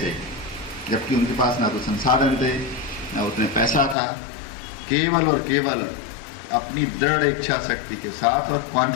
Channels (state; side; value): drops out; right; at 4.0 s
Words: जबकि उनके पास ना तो संसाधन थे, ना उतने पैसा था, केवल और केवल अपनी दृढ़ इच्छा शक्ति के साथ और